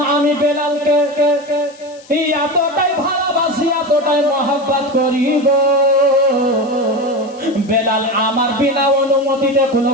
আমি বেলালকে এতটাই ভালোবাসি, এতটাই মহব্বত করি গো, বেলাল আমার বিনা অনুমতিতে কোনো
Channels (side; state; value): left; noise; hiss, 25 dB below the sound